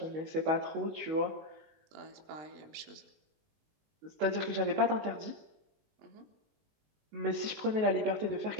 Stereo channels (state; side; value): late; left; 19 ms